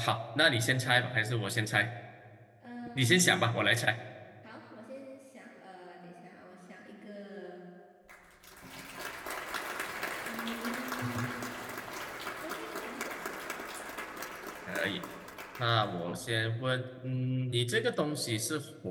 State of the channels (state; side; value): identical; both; correlation 1.00